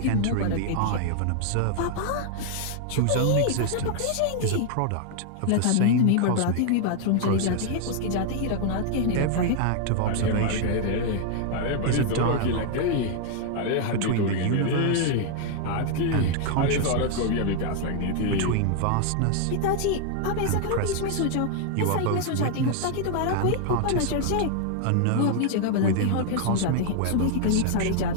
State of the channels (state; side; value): different; both; correlation 0.00